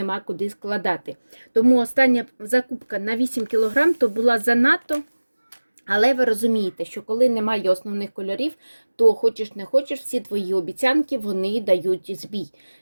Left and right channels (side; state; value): both; inverted; correlation -1.00